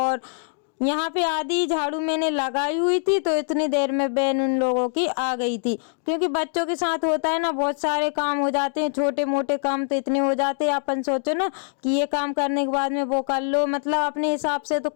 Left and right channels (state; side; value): silent; right; digital silence